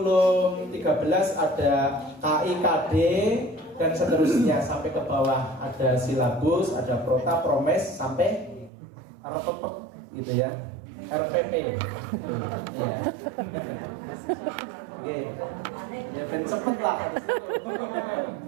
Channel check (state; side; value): drops out; left; at 8.7 s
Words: 13 ada KIKD dan seterusnya sampai ke bawah, ada silabus, ada prota, promes sampai RPP gitu ya. RPP. Ya. Oke. Ya ben cepet lah.